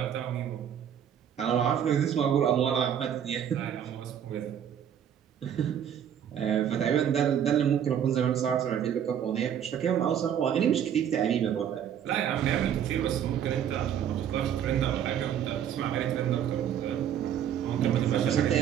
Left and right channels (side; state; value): left; quieter; 9.3 dB